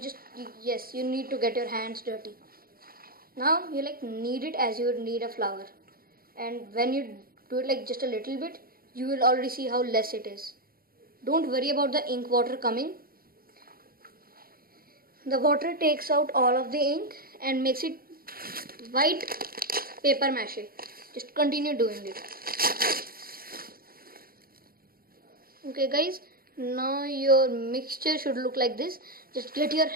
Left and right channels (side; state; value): left; late; 0.43 ms